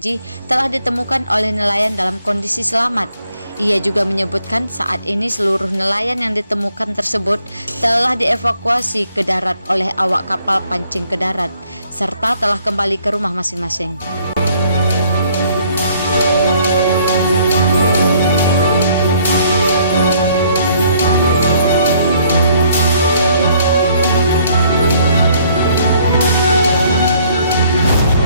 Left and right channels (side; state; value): both; inverted; correlation -0.64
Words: telah ditemukan oleh nelayan dalam kondisi selamat. Ia juga menyebutkan saat ini seluruh nelayan yang ditemukan tersebut telah dievakuasi ke darat oleh awak kapal pancing ke darat, serta telah kembali ke rumah masing-masing.